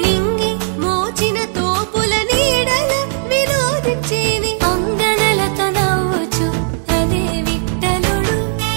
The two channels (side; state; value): left; silent; digital silence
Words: మోచిన తోపుల నీడల వినోదించి అంగనలతో నవ్వుచు అదే విఠలుడు